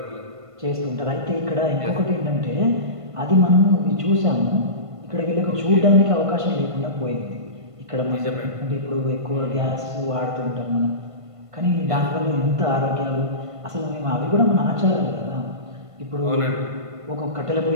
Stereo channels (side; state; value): left; late; 1.5 ms